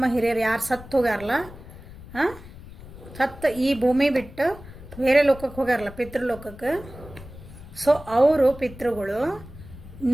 ಹಿರಿಯರು ಯಾರು ಸತ್ತು ಹೋಗ್ಯಾರಲ್ಲ, ಸತ್ತು ಈ ಭೂಮಿ ಬಿಟ್ಟು ಬೇರೆ ಲೋಕಕ್ಕೆ ಹೋಗ್ಯಾರಲ್ಲ, ಪಿತೃಲೋಕಕ್ಕೆ. ಸೊ ಅವರು ಪಿತೃಗಳು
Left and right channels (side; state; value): left; noise; rumble, 17 dB below the sound